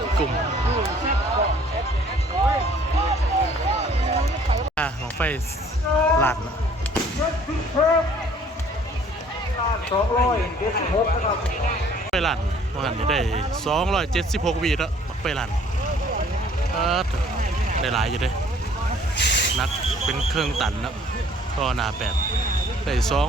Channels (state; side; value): normal; both; correlation 0.56